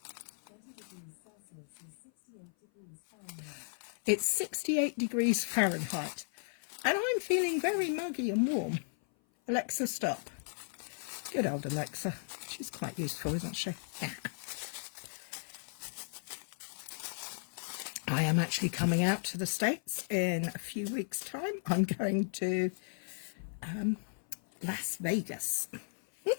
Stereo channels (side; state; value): right; silent; 54 dB below the other